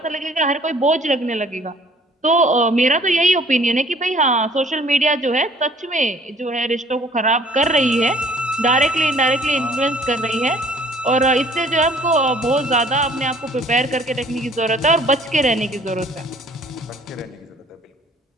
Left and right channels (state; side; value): normal; both; correlation 0.56